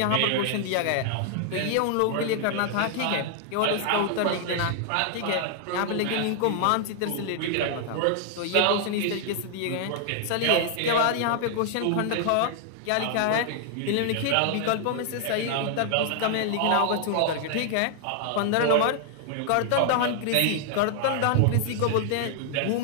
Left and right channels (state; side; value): different; both; correlation 0.00